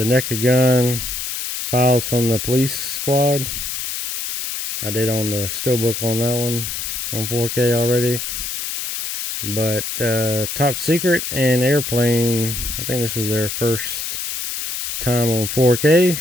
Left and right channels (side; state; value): left; noise; hiss, 4 dB below the sound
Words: Naked Gun, Files from the Police Squad. I did on the Steelbook on that one on 4K already. But Top Secret and Airplane, I think this is their first time on 4K.